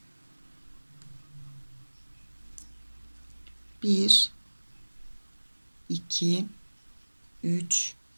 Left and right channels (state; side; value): inverted; both; correlation -1.00